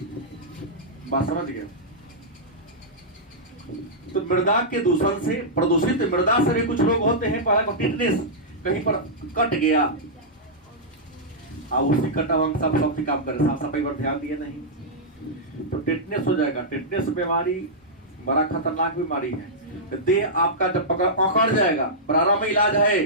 बात समझ गए? तो मृदा के दूषण से, प्रदूषित मृदा से भी कुछ रोग होते हैं। पहला टिटनेस, कहीं पर कट गया, अब उसी कटा हुआ सब सबसे काम करे, साफ सफाई पर ध्यान दिए नहीं तो टिटनेस हो जाएगा। टिटनेस बीमारी बड़ा खतरनाक बीमारी है। देह आपका जब अकड़ जाएगा, प्रारंभ में इलाज है,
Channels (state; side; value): normal; both; correlation -0.11